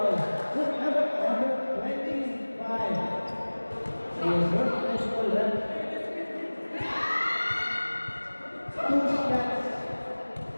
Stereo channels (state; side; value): inverted; both; correlation -1.00